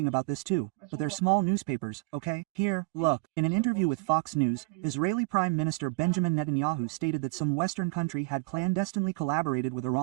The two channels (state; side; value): quieter; left; 24.4 dB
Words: about this too, but they're small newspapers, okay? Here, look. In an interview with Fox News, Israeli Prime Minister Benjamin Netanyahu stated that some Western country had clandestinely collaborated with